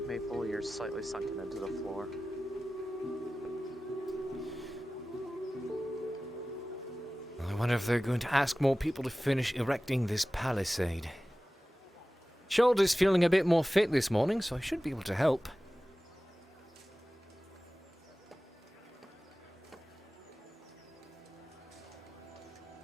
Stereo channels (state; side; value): normal; both; correlation 0.96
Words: Maple, you're slightly sunken into the floor. I wonder if they're going to ask more people to finish erecting this palisade. Shoulder's feeling a bit more fit this morning, so I should be able to help.